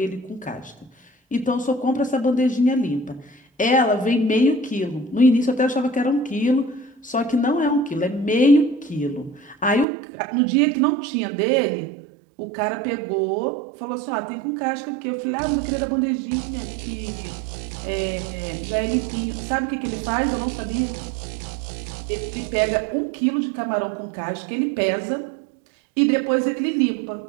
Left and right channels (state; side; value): drops out; left; at 9.9 s